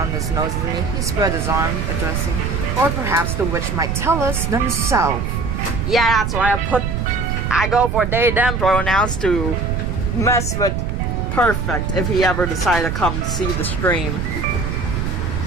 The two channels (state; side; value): noise; right; rumble, 1 dB below the sound